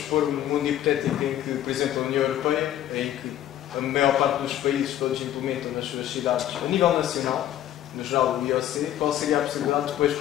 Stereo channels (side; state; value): right; quieter; 11.9 dB